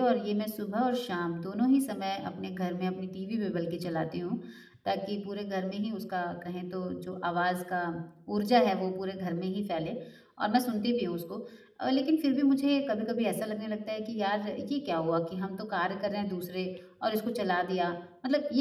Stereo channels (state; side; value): identical; both; correlation 1.00